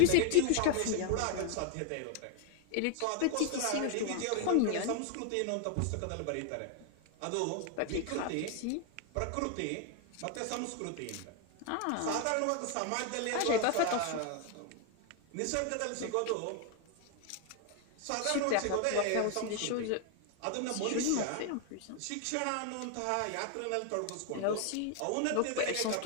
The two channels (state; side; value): different; both; correlation 0.01